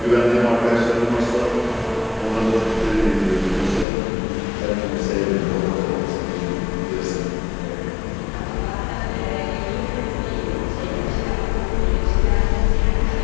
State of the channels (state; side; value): drops out; right; at 3.9 s